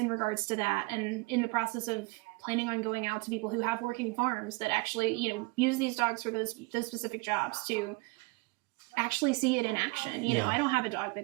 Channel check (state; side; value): quieter; left; 26.0 dB